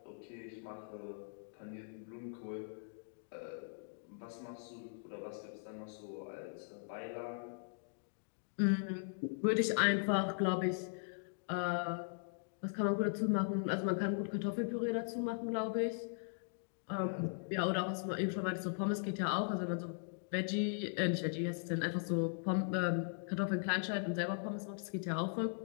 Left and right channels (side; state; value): right; silent; digital silence